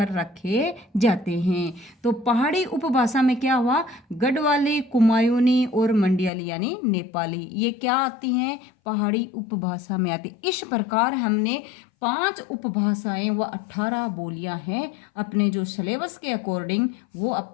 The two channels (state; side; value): drops out; right; at 6.3 s